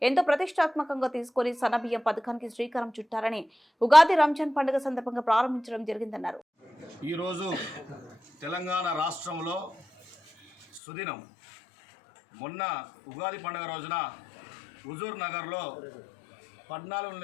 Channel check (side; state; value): right; drops out; at 10.8 s